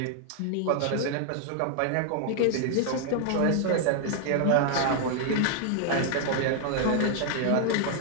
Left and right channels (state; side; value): different; both; correlation 0.00